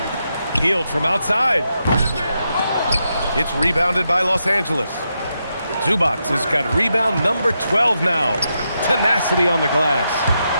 Hield from outside. It's rebounded by Los Angeles. Zubac has got rebound number 12 now. Tenacity on the glass.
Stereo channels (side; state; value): both; inverted; correlation -0.84